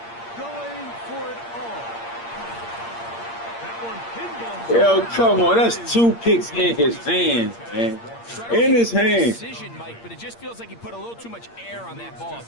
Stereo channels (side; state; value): right; late; 8.6 ms